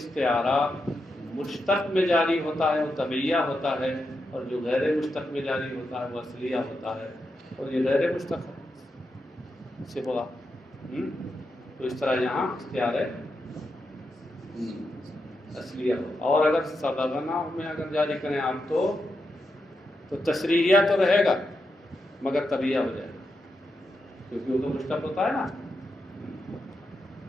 مشتق میں جاری ہوتا ہے وہ طبعیہ ہوتا ہے، اور جو غیر مشتق میں جاری ہوتا ہے وہ اصلیہ ہوتا ہے، اور یہ غیر مشتق ہے صبغہ۔ تو اس طرح یہاں اختیار اصلیہ ہو. اور اگر سبغنا میں اگر جاری کریں آپ تو تشریحیہ تو رہے گا مگر طبیعہ ہو جائے گا کیونکہ وہ تو مشتق ہوتا ہے نا.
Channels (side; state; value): both; normal; correlation 0.86